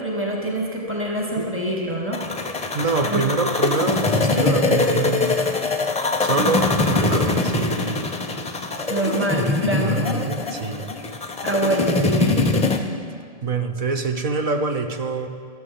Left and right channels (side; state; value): left; late; 1.7 ms